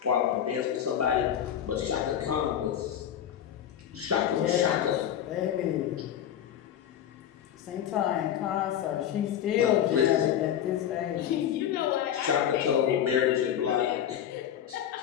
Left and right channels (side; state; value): right; quieter; 10.0 dB